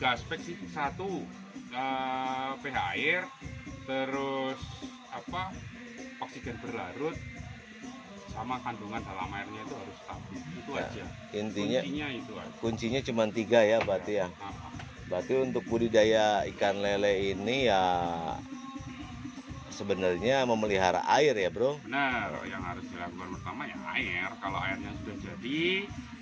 aspek sih. Satu, pH air, terus oksigen berlarut, sama kandungan dalam airnya itu harus stabil. Itu Ya, aja. Intinya itu aja. kuncinya cuma 3 ya berarti ya. Berarti untuk budidaya ikan lele ini ya sebenarnya memelihara air ya, Bro. Benar, yang harus dilakukan pertama ya air. Kalau airnya sudah jadi,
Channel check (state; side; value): identical; both; correlation 1.00